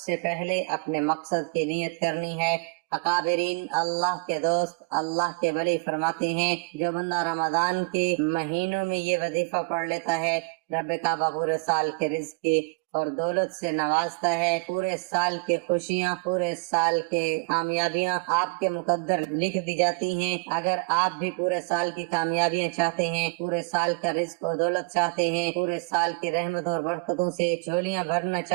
پہلے اپنے مقصد کی نیت کرنی ہے۔ اکابرین، اللہ کے دوست، اللہ کے ولی فرماتے ہیں جو بندہ رمضان کے مہینوں میں یہ وظیفہ پڑھ لیتا ہے، رب کعبہ پورے سال کے رزق کی اور دولت سے نوازتا ہے، پورے سال کے خوشیاں، پورے سال کے کامیابیاں آپ کے مقدر لکھ دی جاتی ہیں۔ اگر آپ بھی پورے سال کی کامیابیاں چاہتے ہیں، پورے سال کا رزق اور دولت چاہتے ہیں، پورے سال کی رحمت اور برکتوں سے جھولیاں بھرنا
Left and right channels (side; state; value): left; quieter; 31.3 dB